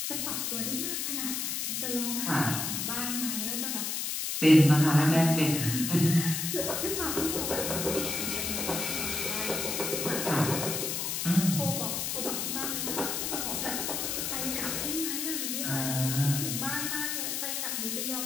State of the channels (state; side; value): noise; left; hiss, 1 dB below the sound